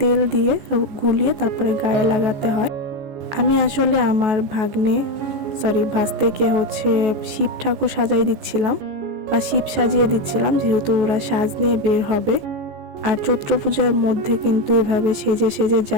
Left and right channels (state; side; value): late; left; 14 ms